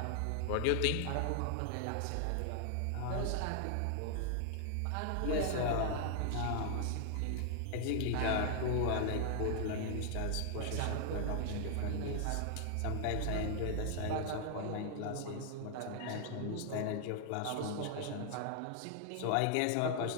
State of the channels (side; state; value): both; different; correlation 0.00